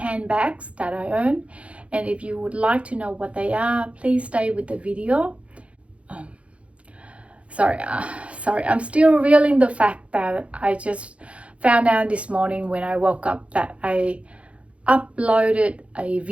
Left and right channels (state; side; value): late; left; 0.062 ms